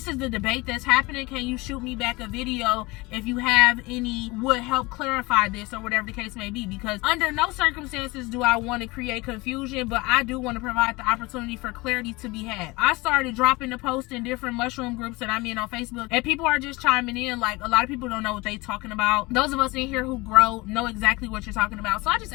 is the debate that's happening, can you shoot me back a video video if you have any would help clarify this or whatever the case may be, because under no circumstances do I want to create confusion, but I do want to provide the opportunity for clarity to be had. I started dropping the post in different mushroom groups that I'm in on Facebook, and people are just chiming in. Like, a lot of people don't know what they talking about. Those of us in here who grow know exactly what you're talking about. So I just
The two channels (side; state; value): right; quieter; 23.2 dB